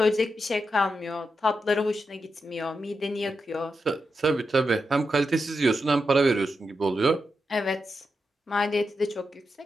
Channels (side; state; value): both; normal; correlation 0.87